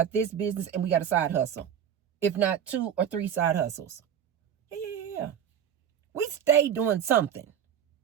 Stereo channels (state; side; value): quieter; left; 8.9 dB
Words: this business, and we got a side hustle. If not 2 or 3 side hustles. Yeah. We stay doing something.